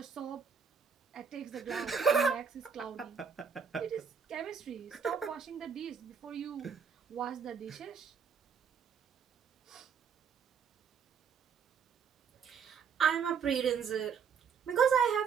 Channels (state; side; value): quieter; left; 6.5 dB